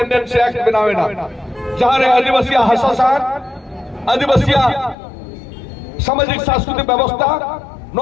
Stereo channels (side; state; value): right; drops out; at 5.0 s